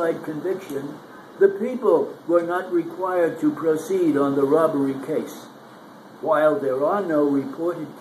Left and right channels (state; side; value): identical; both; correlation 1.00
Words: conviction, the people were not required to proceed on the robbery case. While there are no reported